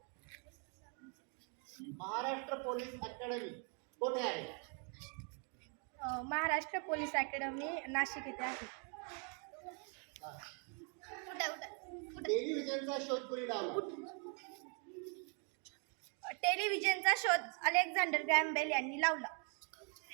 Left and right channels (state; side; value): quieter; left; 38.2 dB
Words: महाराष्ट्र पोलीस अकॅडमी कोठे आहे? महाराष्ट्र पोलीस अकॅडमी नाशिक येथे आहे. टेलिव्हिजनचा शोध कोणी लावला? टेलिव्हिजनचा शोध अलेक्झांडर ग्रॅहम बेल यांनी लावला.